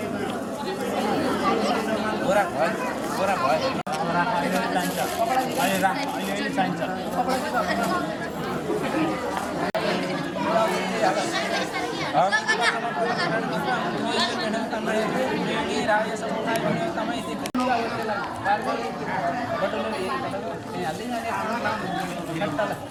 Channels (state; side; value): identical; both; correlation 1.00